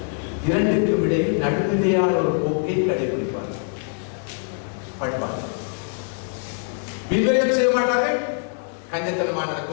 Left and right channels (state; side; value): silent; right; 55 dB below the other